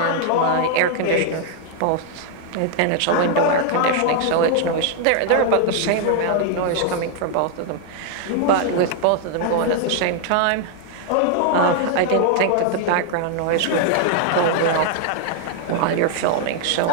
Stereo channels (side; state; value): both; different; correlation 0.00